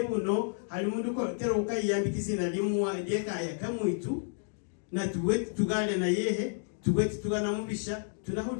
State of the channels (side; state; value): right; silent; digital silence